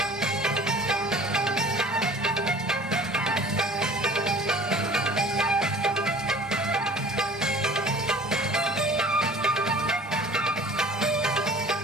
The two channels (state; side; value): normal; both; correlation 0.46